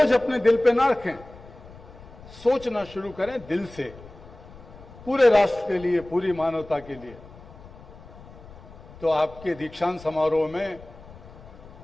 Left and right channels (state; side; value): noise; left; rumble, 19 dB below the sound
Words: अपने दिल पे ना रखें, सोचना शुरू करें दिल से, पूरे राष्ट्र के लिए, पूरी मानवता के लिए। तो आपके दीक्षांत समारोह में